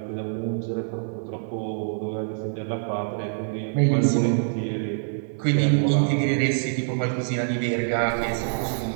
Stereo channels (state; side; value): silent; left; 62 dB below the other